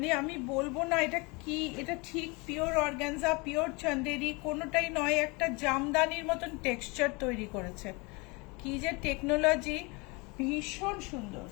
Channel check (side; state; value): right; quieter; 27.7 dB